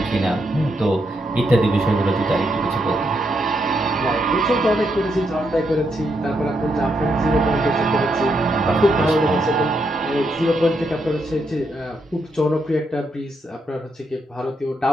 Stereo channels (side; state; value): both; normal; correlation 0.79